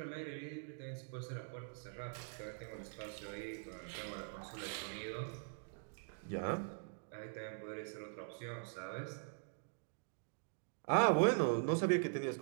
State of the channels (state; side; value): silent; left; digital silence